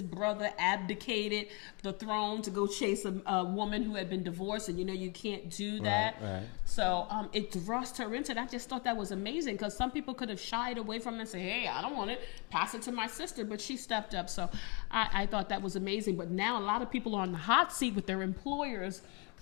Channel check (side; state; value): right; quieter; 32.0 dB